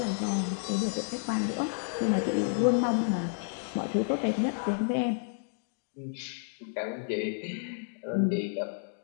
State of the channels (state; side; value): silent; right; digital silence